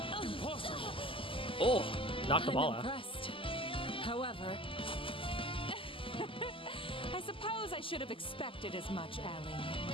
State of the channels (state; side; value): late; right; 0.25 ms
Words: Impossible. Oh, knock the ball I'm out. impressed. However, I suppose I should have expected as much, Ellie.